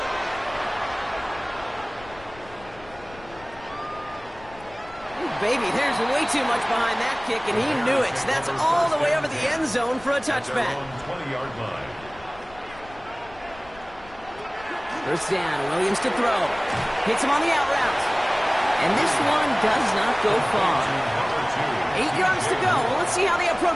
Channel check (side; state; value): left; noise; rumble, 21 dB below the sound